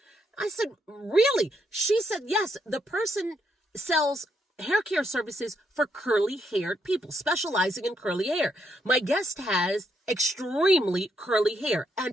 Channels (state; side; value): normal; both; correlation 0.77